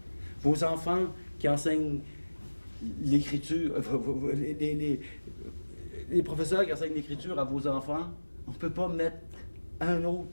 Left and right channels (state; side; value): inverted; both; correlation -1.00